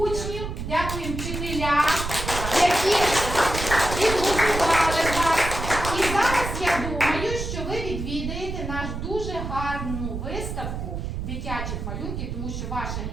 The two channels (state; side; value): noise; right; rumble, 5 dB below the sound